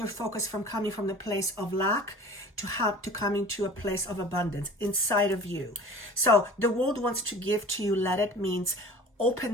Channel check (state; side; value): normal; both; correlation 0.42